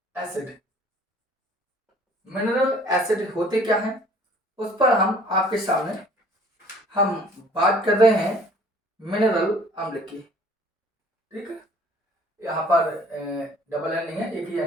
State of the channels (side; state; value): both; normal; correlation 0.54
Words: एसिड, मिनरल एसिड होते क्या हैं, उस पर हम आपके सामने हम बात कर रहे हैं मिनरल अम्ल की, ठीक है। यहाँ पर डबल एन नहीं है, एक ही